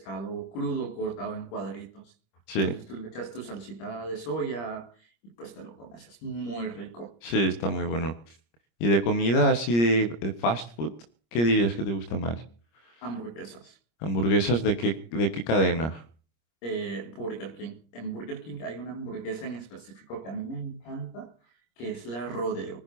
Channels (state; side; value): late; right; 26 ms